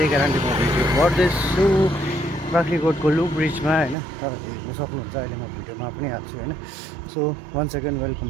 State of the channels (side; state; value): left; drops out; at 4.0 s